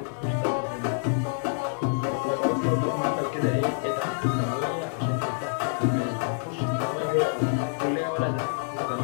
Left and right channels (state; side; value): silent; right; 56 dB below the other